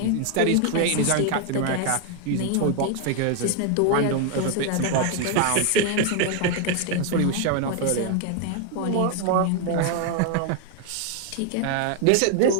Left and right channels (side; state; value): both; different; correlation 0.01